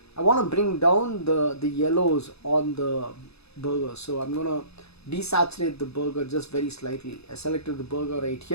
I want to bring down the yellows on the burger, so I'm gonna desaturate the burger just very slightly. I selected the burger right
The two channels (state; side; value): late; right; 0.79 ms